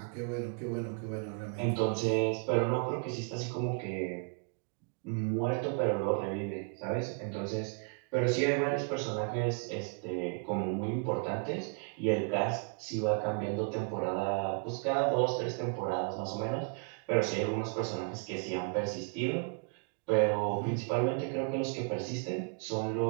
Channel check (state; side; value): quieter; left; 37.7 dB